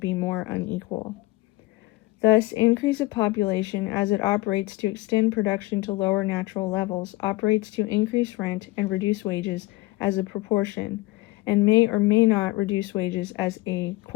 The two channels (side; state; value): right; quieter; 19.8 dB